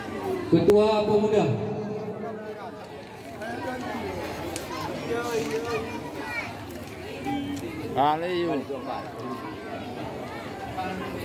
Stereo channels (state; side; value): identical; both; correlation 1.00